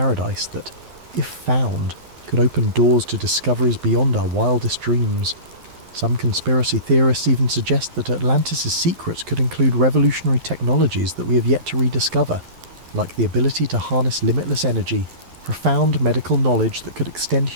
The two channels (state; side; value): late; left; 11 ms